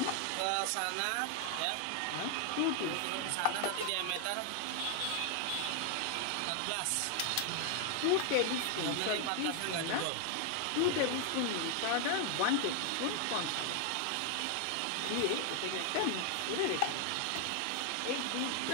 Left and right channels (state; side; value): different; both; correlation 0.00